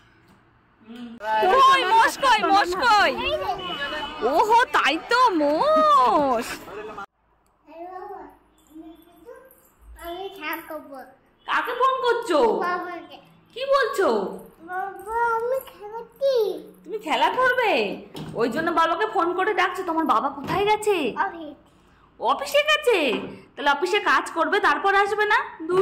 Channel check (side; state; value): both; identical; correlation 1.00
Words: কই মোষ কই, মোষ কই? ওহো তাই তো মোষ। কাকে ফোন করছো? কি বলছো? তুমি খেলা করবে? ওই জন্য বাবাকে ফোন করে ডাকছো। তোমার বাবা কোথায় গেছে? অফিসে গেছে। তাহলে অফিসে কাজ করবে তারপর আসবে না?